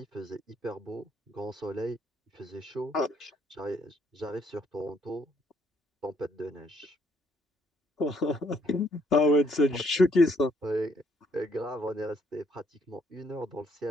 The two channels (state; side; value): normal; both; correlation 0.69